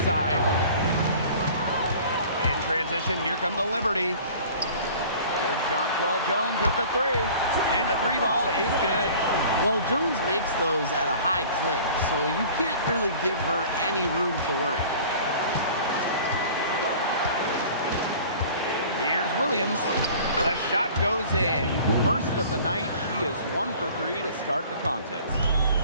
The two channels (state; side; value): inverted; both; correlation -0.46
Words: In transition, here come the Liberty. There's Jonquel Jones with the 3. And the 3 ball is good. Well, Jones makes those at a high clip, so you can't really give her any room to work. Here's Williams. The shot goes in. First of the night, she is 1 for 3 to start the contest.